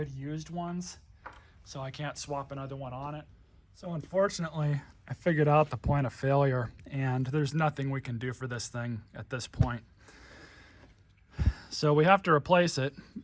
used ones, so I can't swap another one on it. So unfortunately, I figured out the point of failure, and there's nothing we can do for this thing at this point. So we have to replace it.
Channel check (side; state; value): both; identical; correlation 1.00